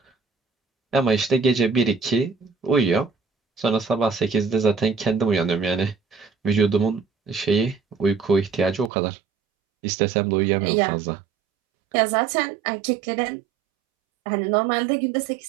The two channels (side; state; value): left; drops out; at 8.9 s